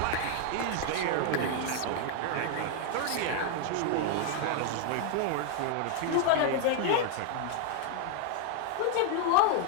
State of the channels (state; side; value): different; both; correlation 0.00